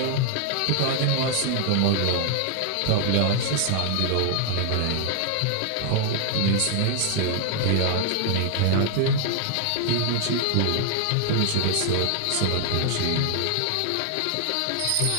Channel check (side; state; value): both; different; correlation 0.00